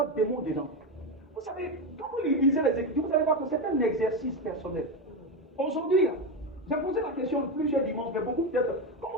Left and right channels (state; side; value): normal; both; correlation 0.14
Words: de démons dedans. Vous savez, quand vous lisez les Écritures, vous allez voir que c'est un exercice personnel. Aujourd'hui, j'ai posé la question plusieurs dimanches, mais beaucoup peut-être,